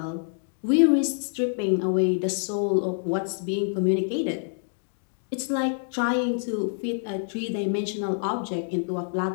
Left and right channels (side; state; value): right; silent; digital silence